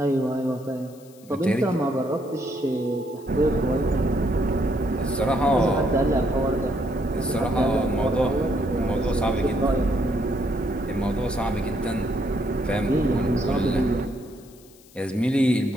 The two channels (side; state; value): left; noise; hiss, 26 dB below the sound